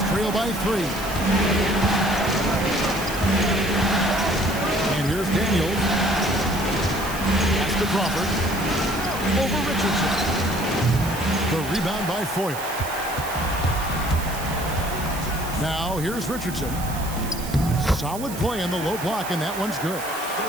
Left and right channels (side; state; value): right; noise; hiss, 12 dB below the sound